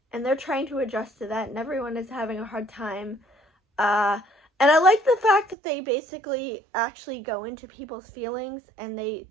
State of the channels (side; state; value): left; drops out; at 5.6 s